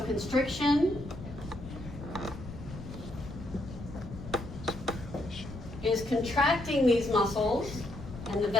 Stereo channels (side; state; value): left; noise; rumble, 12 dB below the sound